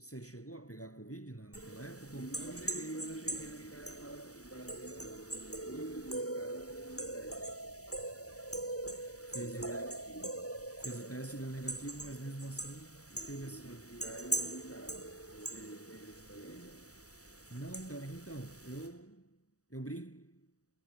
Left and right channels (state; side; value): late; right; 0.66 ms